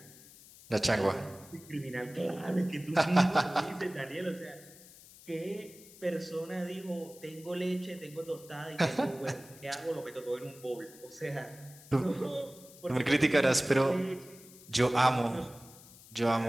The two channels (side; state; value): left; noise; hiss, 21 dB below the sound